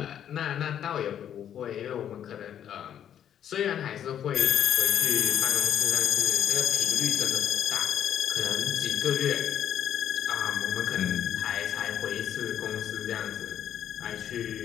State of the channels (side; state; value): right; quieter; 9.8 dB